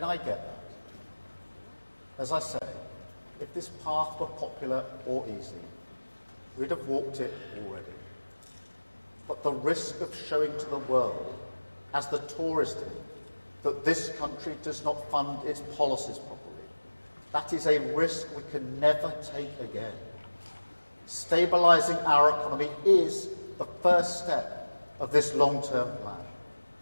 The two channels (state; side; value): inverted; both; correlation -1.00